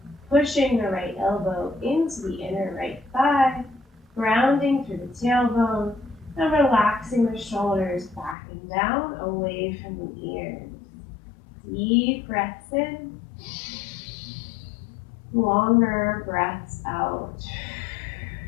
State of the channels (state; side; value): drops out; right; at 8.3 s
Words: Pushing the right elbow into the inner right thigh, grounding through the tailbone, and relaxing the shoulders back and down away from the ears. Deep breaths in. Longer breaths out.